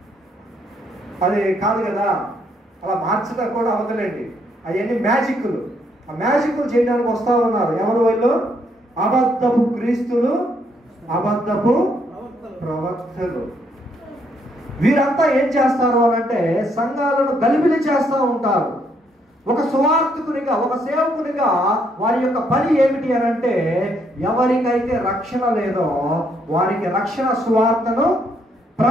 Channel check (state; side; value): normal; both; correlation 0.72